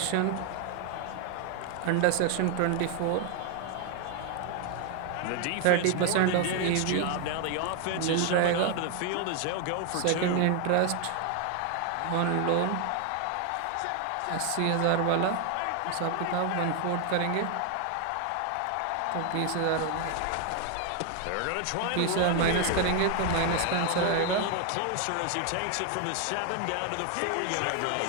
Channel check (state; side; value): different; both; correlation 0.01